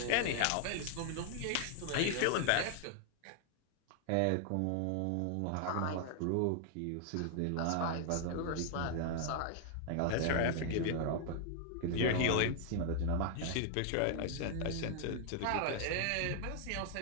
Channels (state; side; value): different; both; correlation 0.00